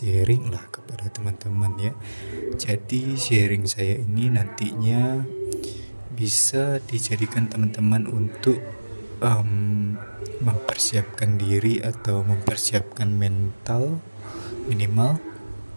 lah kepada teman-teman ya. Jadi sharing saya ini nantinya bisa dijadikan teman-teman untuk mempersiapkan diri atau mempersiapkan mental minimal,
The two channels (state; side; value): inverted; both; correlation -1.00